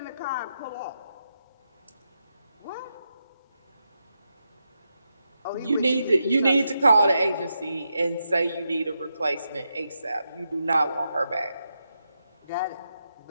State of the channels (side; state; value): both; inverted; correlation -0.85